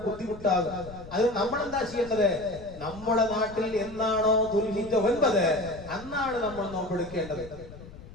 ബുദ്ധിമുട്ടാകും. അത് നമ്മൾ എന്താ ചെയ്യേണ്ടത്? നമ്മുടെ നാട്ടിൽ എന്നാണോ ദുൽഹിജ്ജ 9 അന്നാണ് നമ്മൾ നോമ്പെടുക്കേണ്ടത്.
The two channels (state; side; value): noise; left; rumble, 16 dB below the sound